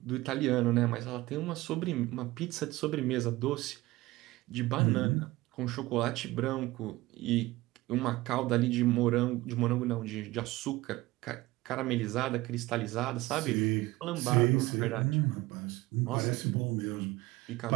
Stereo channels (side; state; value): left; quieter; 19.0 dB